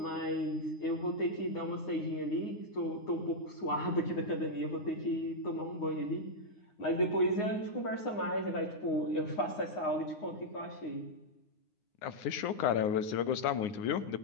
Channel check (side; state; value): right; late; 9.7 ms